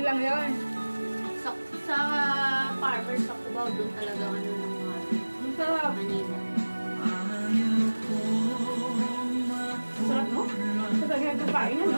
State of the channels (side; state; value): both; inverted; correlation -1.00